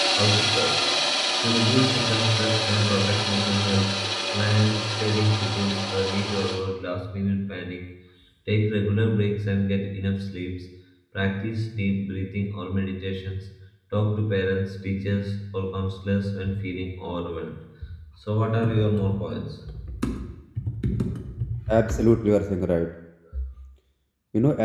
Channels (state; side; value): identical; both; correlation 1.00